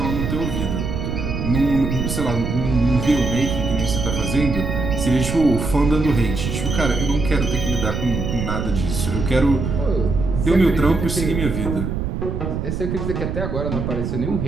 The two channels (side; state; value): right; noise; rumble, 3 dB below the sound